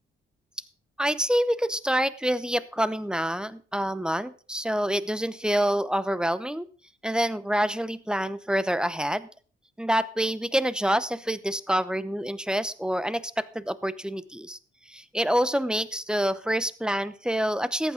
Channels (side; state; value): both; normal; correlation 0.89